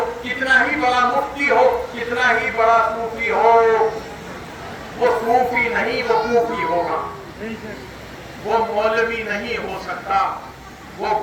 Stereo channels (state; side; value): identical; both; correlation 1.00